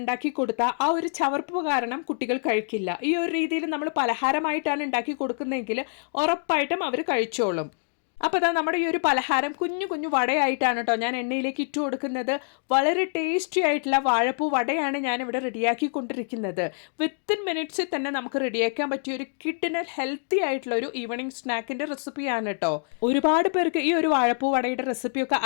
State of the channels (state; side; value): silent; right; digital silence